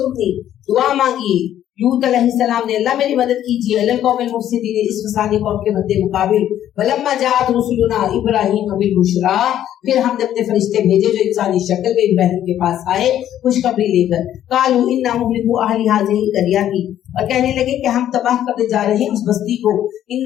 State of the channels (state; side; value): quieter; right; 11.4 dB